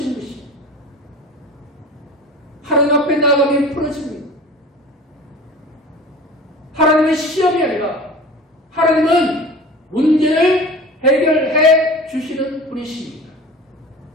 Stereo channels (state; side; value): normal; both; correlation 0.38